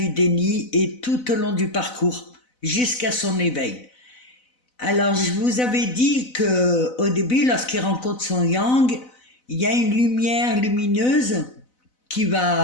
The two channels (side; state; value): right; late; 4.0 ms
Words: déni et tout au long du parcours, jusqu'à son éveil. Alors je vous avais dit que au début, lorsqu'il rencontre son yang, il y a une lumière lumineuse qui